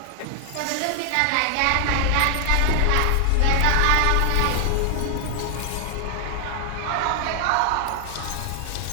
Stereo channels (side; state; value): both; different; correlation 0.00